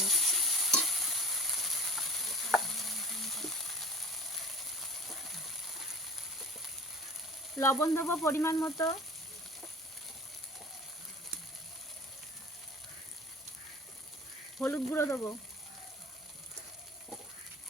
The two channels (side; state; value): both; normal; correlation 0.42